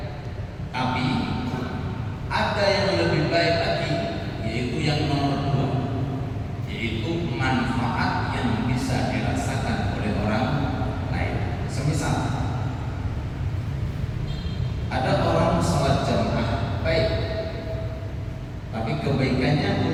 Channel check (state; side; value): identical; both; correlation 1.00